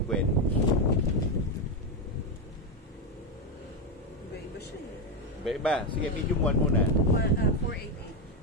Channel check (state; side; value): normal; both; correlation 0.08